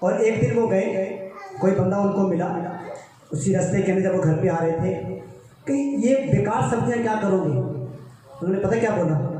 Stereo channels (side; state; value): both; identical; correlation 1.00